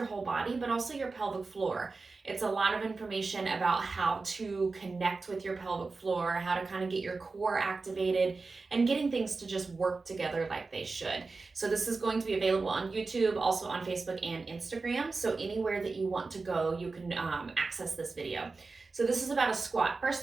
whole body, but also your pelvic floor. It's a lot of information about how to connect with your pelvic floor, how to kind of get your core activated, and getting things to just work together like they should. So this is going to be available on YouTube, also on Facebook and Instagram. So anywhere that you want to go, you can access this video. So this is about a squat.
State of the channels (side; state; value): left; quieter; 4.0 dB